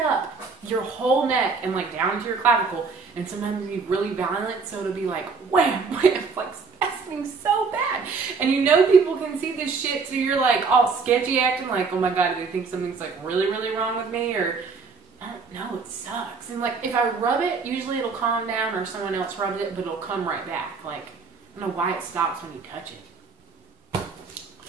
your whole neck and like down to your clavicle, and sometimes it'll be really violent, so it'll be like wham, wham, like spasming so bad. And you know people can see this shit, so you're like all sketchy acting like, oh my god, do they think something's like really, really wrong with me? Or I don't know, it sucks. And like if I rub it, usually it'll calm down, or someone else rubs it, but it'll come right back. Like, I don't know why it stops when you touch it.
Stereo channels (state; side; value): quieter; left; 4.8 dB